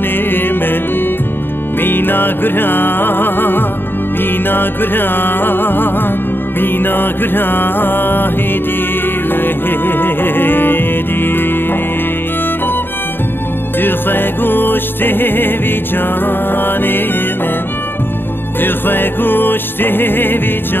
من مینا گران مینا گران مینا گران هدی دخواه گشته بی جان من دخواه گشته بی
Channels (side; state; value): right; late; 0.099 ms